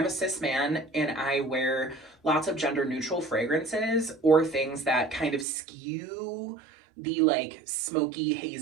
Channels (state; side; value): drops out; left; at 5.5 s